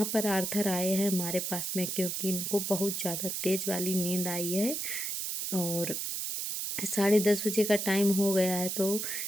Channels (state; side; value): noise; right; hiss, 3 dB below the sound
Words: पर आर्थर आए हैं हमारे पास में, क्योंकि इनको बहुत ज़्यादा तेज़ वाली नींद आई है, और 10:30 बजे का टाइम हो गया है, तो